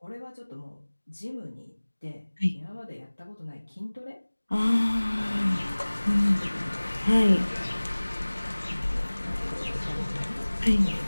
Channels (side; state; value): both; inverted; correlation -1.00